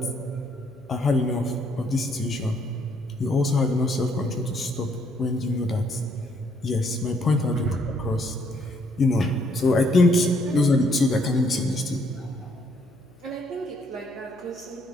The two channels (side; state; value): left; noise; hum, 29 dB below the sound